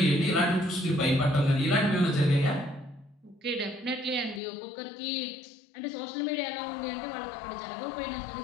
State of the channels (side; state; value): right; drops out; at 4.4 s